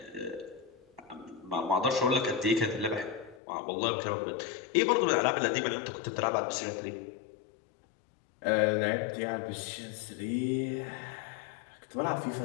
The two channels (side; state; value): right; drops out; at 3.4 s